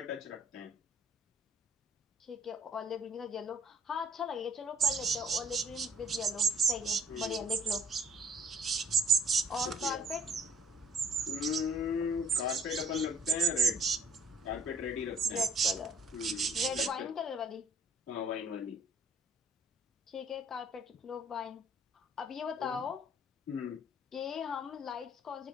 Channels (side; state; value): both; normal; correlation 0.61